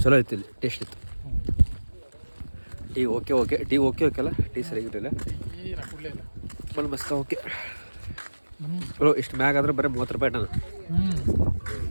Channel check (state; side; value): inverted; both; correlation -1.00